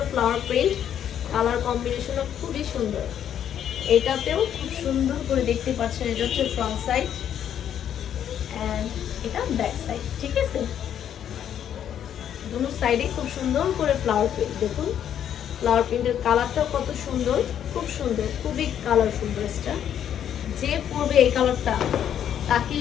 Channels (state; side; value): quieter; right; 9.7 dB